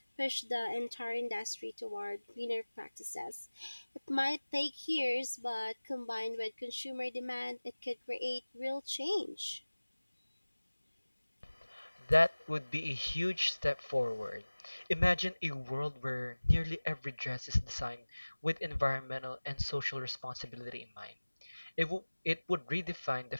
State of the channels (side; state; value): both; inverted; correlation -1.00